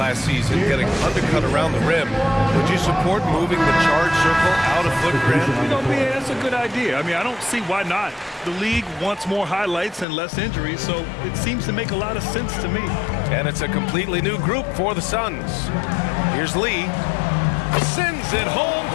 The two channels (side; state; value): right; drops out; at 10.1 s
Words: season getting undercut around the rim, would you support moving the charge circle out of footprint? You know, man, that's a good idea. I mean, I don't see why not. The league wants more highlights and less injuries, so it seems to make a lot of sense to me. And it's a completely new group for the Suns. Here's Lee. Sends it home